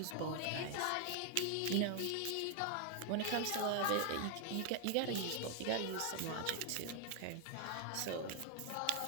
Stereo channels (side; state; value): both; different; correlation 0.00